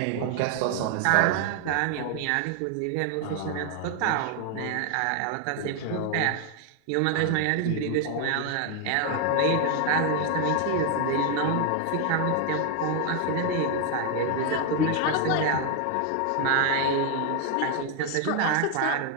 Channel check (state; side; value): different; both; correlation 0.01